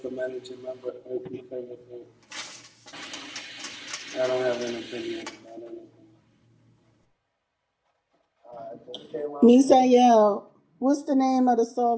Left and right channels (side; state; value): both; identical; correlation 1.00